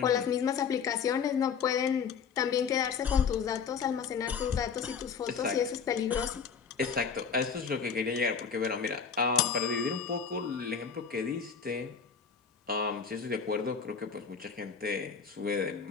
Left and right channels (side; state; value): right; quieter; 6.3 dB